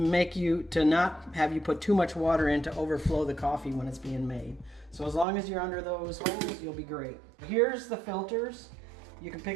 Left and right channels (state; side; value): drops out; left; at 5.2 s